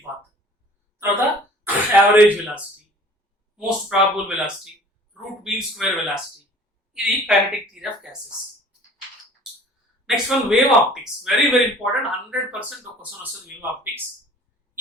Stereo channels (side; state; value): both; normal; correlation 0.49